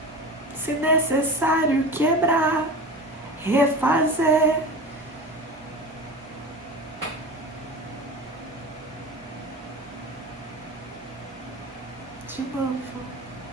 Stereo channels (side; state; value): both; normal; correlation 0.32